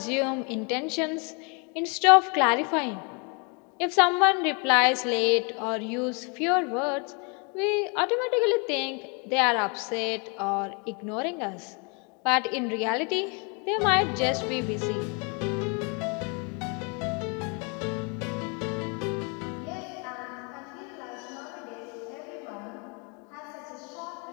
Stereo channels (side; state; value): right; quieter; 34.2 dB